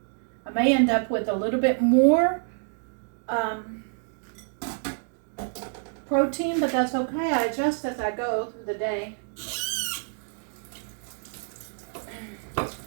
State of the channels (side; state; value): left; silent; 60 dB below the other